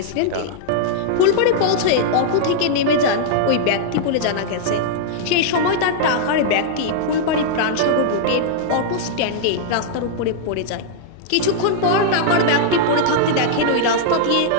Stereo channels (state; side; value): different; both; correlation -0.01